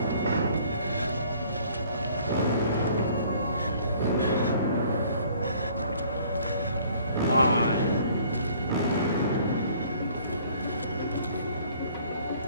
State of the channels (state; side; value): inverted; both; correlation -0.57